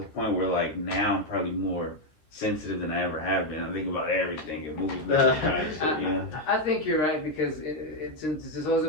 point where like now I'm probably more sensitive than I ever have been. I think about everything and movies. I think you're right because it's this whole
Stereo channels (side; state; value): right; late; 13 ms